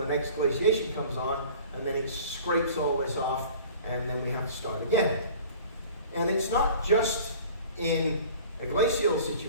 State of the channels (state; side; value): inverted; both; correlation -0.45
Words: next glaciation comes on, and then it scrapes all this off, and then we have to start again. And it's not just in a glacial